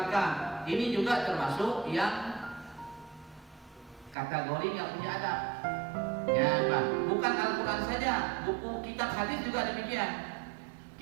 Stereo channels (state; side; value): drops out; left; at 4.2 s